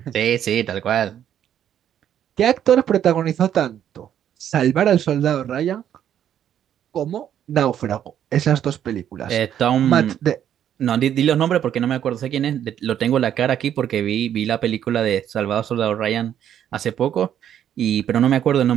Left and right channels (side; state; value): left; quieter; 10.0 dB